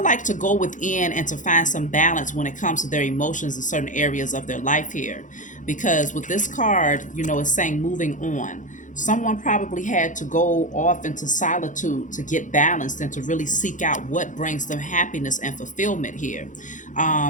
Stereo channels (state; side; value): late; right; 0.37 ms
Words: like, to go within and to find some balance when it comes to their emotions in certain areas of their life here. Because with this card, it's saying moving on. Someone probably had to go off into solitude to get balanced and to really seek out what brings them happiness and fulfillment here.